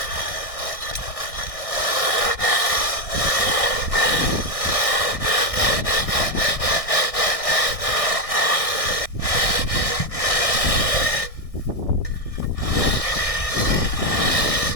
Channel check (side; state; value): right; late; 1.6 ms